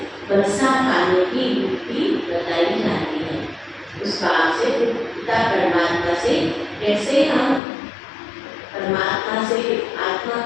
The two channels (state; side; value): drops out; right; at 7.6 s